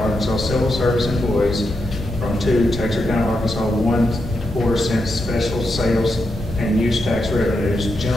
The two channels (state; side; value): normal; both; correlation 0.84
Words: Arkansas civil service employees from 2 Texarkana, Arkansas 1 cent special sales and use tax revenues,